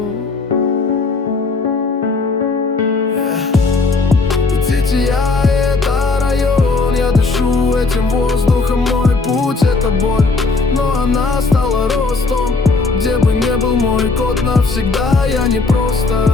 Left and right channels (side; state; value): right; quieter; 3.8 dB